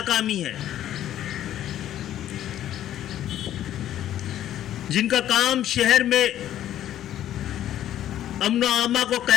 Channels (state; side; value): quieter; right; 11.9 dB